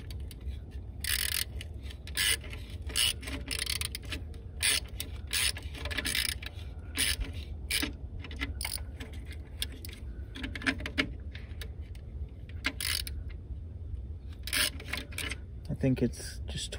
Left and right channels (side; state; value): both; identical; correlation 1.00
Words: I think it's just